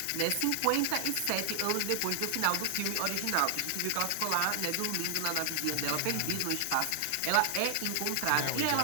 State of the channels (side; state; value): both; different; correlation 0.00